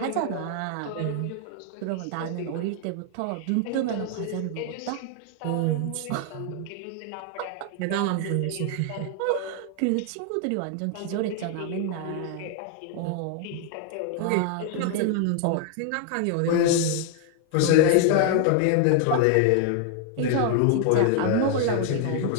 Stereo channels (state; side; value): different; both; correlation 0.00